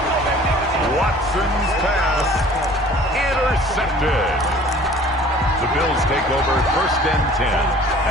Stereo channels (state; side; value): normal; both; correlation 0.49